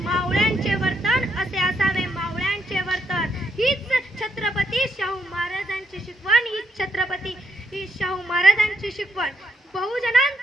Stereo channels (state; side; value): normal; both; correlation 0.77